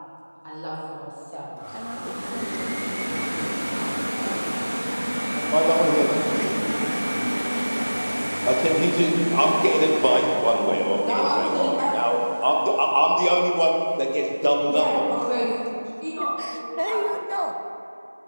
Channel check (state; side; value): inverted; both; correlation -1.00